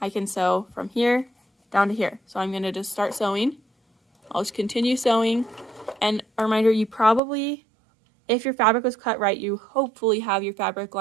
can sew from here down to here. So I'm going to just start sewing. I'll just continue sewing. And a reminder, you probably, if your fabric was cut right, you hopefully have your fabric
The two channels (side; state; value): left; drops out; at 7.2 s